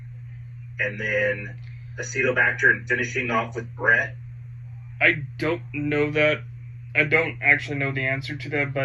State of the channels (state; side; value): identical; both; correlation 1.00